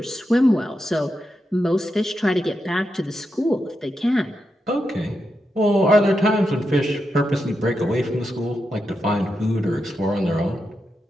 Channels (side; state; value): both; normal; correlation 0.86